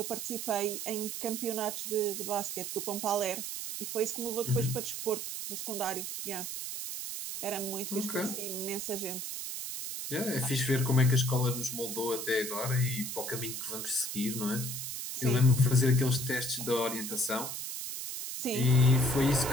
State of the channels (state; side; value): noise; right; hiss, 5 dB below the sound